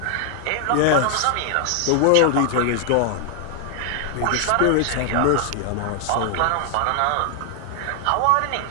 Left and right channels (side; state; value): both; different; correlation 0.00